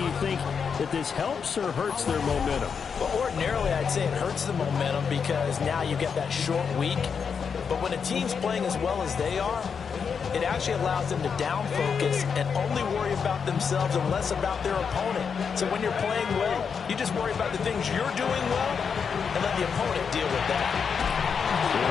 think that this helps or hurts their momentum? Well, ordinarily, I'd say it hurts the momentum because now you get that short week. But when a team's playing as well as they are, it actually allows them to down focus and only worry about themselves and less about their opponent. So when you're playing well, you just worry about the things you're doing well and let the opponent deal with that.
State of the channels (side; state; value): right; quieter; 6.3 dB